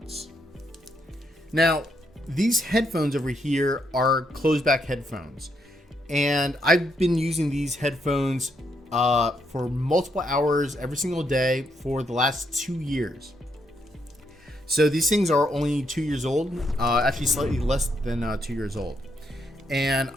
Now, these headphones over here are closed back headphones, and I've been using these headphones for multiple hours every single day for the last 2 years. So these things are only 2 years old, actually slightly less than 2 years old. And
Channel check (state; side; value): normal; both; correlation 0.76